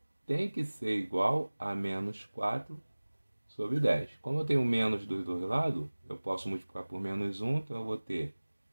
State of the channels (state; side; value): inverted; both; correlation -1.00